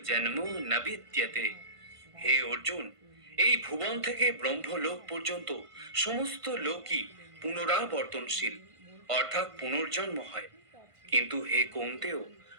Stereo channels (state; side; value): late; left; 1.5 ms